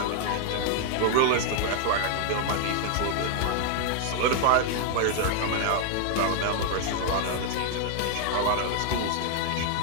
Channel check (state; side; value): different; both; correlation 0.00